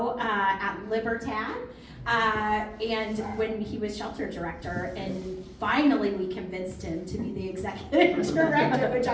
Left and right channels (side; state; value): both; identical; correlation 1.00